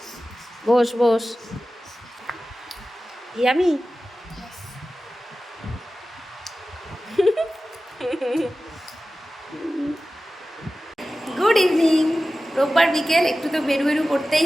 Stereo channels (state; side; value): normal; both; correlation 0.95